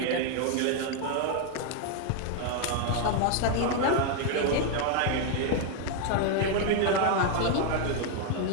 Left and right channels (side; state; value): both; different; correlation 0.01